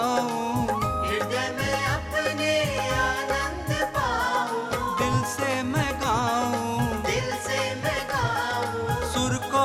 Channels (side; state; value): both; identical; correlation 1.00